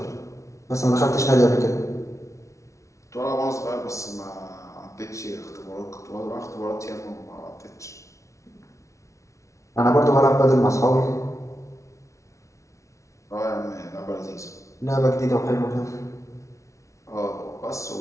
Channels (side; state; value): right; late; 0.14 ms